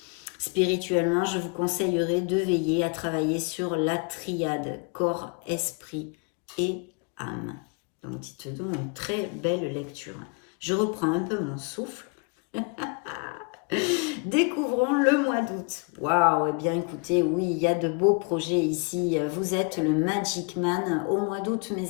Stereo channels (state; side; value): quieter; right; 33.9 dB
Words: Spirituellement, je vous conseillerais de veiller à travailler sur la triade corps, esprit et âme. Donc, dites donc une très belle lecture. Je reprends un peu mon souffle. Découvrons le mois d'août. Waouh, eh bien écoutez, oui, il y a de beaux projets ici. Vous êtes le Magic Man au mois d'août,